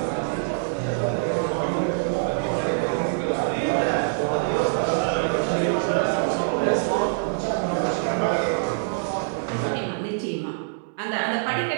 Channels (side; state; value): left; silent; digital silence